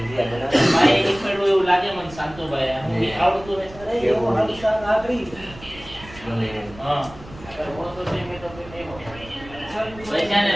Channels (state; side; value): noise; right; rumble, 18 dB below the sound